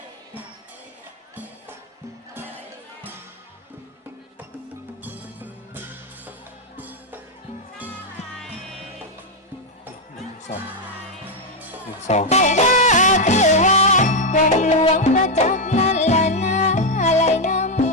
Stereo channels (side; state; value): both; normal; correlation 0.03